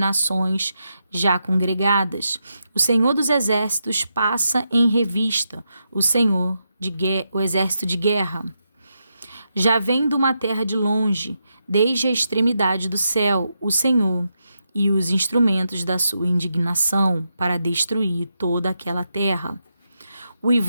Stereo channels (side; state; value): both; inverted; correlation -0.84